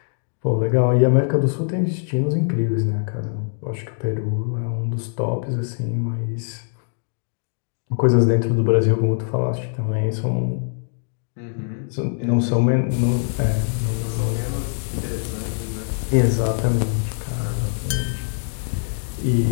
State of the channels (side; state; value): right; silent; digital silence